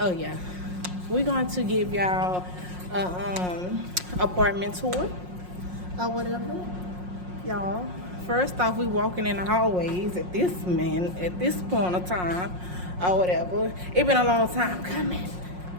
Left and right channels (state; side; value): late; left; 5.6 ms